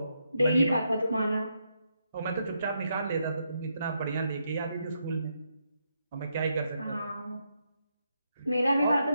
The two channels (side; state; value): both; inverted; correlation -0.80